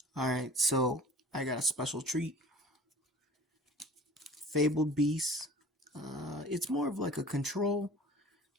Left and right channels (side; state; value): both; normal; correlation 0.44